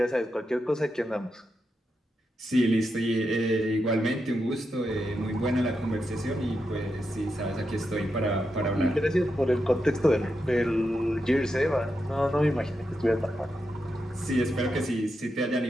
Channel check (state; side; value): normal; both; correlation 0.86